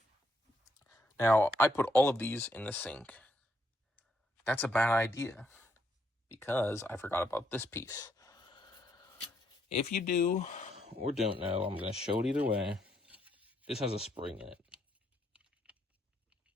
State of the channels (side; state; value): both; normal; correlation 0.74